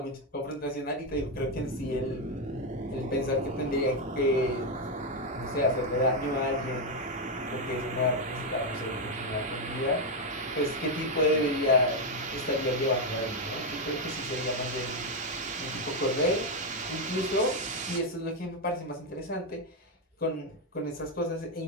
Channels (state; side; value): normal; both; correlation 0.04